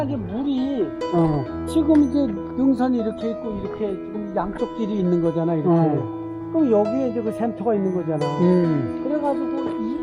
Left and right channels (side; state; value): both; identical; correlation 1.00